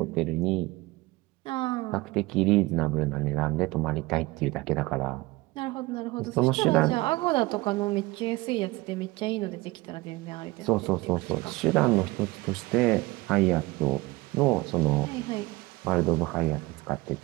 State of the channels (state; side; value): quieter; left; 21.3 dB